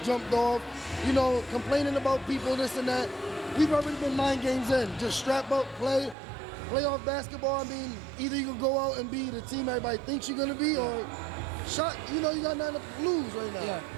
jumped off. Complaining about people, this and that. We've already been 9 games in. Just strap up, play off basketball. I mean, either you can go out and be the team everybody thinks you're gonna be, or shot. You got nothing to lose right now.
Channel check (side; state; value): left; drops out; at 6.2 s